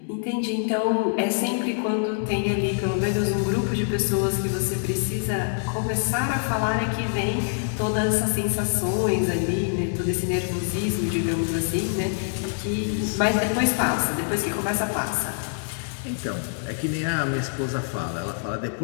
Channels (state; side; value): silent; right; digital silence